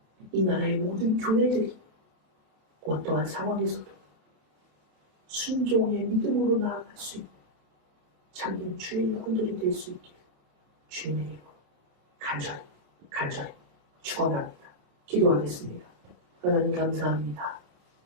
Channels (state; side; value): late; left; 27 ms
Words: 이 나라의 모든 교회들이 어떠한 상황에서도 순종의 믿음으로 나아갈 수 있는 참된 주의 일꾼들이 될 수 있기를 주님의 이름으로 간절히 축원합니다. 기도하겠습니다. 하나님 감사합니다.